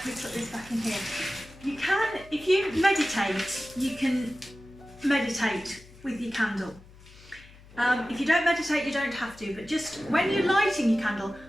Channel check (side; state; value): left; noise; hum, 22 dB below the sound